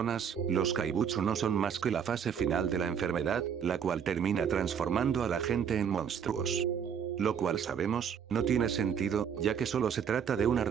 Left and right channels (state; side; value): quieter; left; 7.7 dB